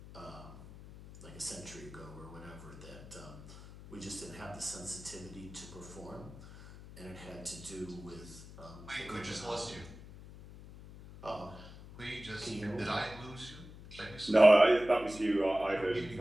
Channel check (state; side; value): noise; left; hum, 16 dB below the sound